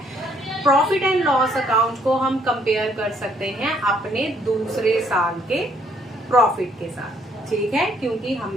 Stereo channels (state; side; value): normal; both; correlation 0.67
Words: प्रॉफिट एंड लॉस अकाउंट को हम कंपेयर कर सकते हैं अपने दूसरे साल के प्रॉफिट के साथ। ठीक है, क्योंकि